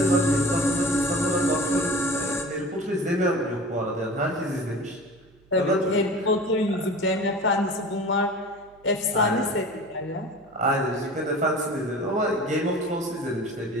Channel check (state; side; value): noise; right; hum, 30 dB below the sound